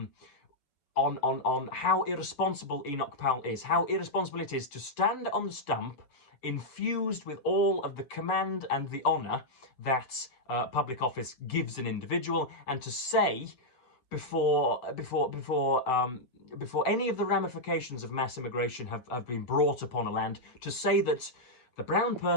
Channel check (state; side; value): late; right; 7.8 ms